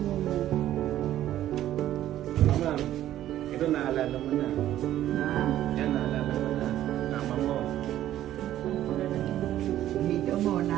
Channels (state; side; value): quieter; left; 12.7 dB